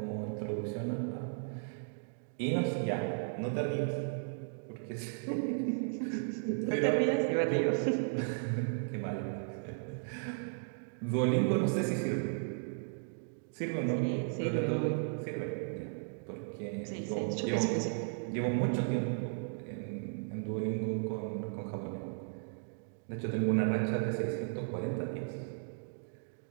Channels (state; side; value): silent; left; digital silence